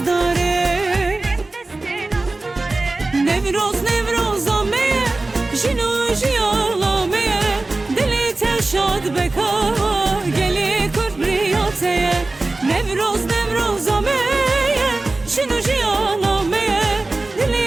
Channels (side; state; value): left; quieter; 3.2 dB